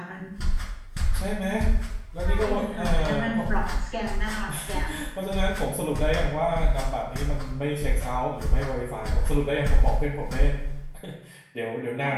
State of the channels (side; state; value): both; identical; correlation 1.00